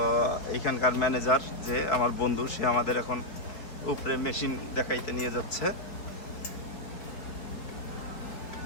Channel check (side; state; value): right; late; 4.2 ms